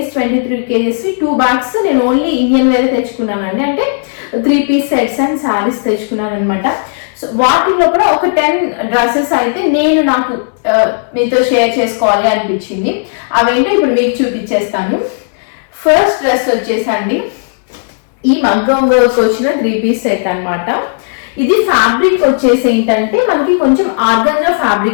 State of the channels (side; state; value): right; silent; digital silence